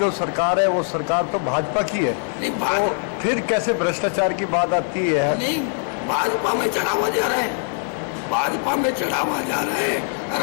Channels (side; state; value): right; silent; 58 dB below the other